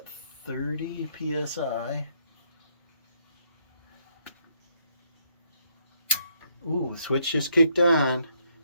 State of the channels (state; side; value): inverted; both; correlation -0.73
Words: 30 psi. Ooh, the switch just kicked on.